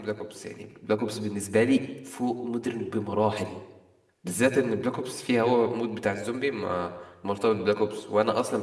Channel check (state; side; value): identical; both; correlation 1.00